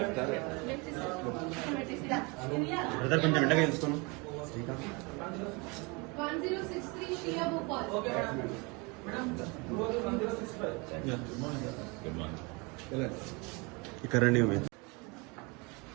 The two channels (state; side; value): quieter; left; 28.6 dB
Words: Brother కొంచెం ఎండగా తెలుసుకున్నాం 1063 Shia Bhopal. Good morning. ఇక్కడ రండి మీరు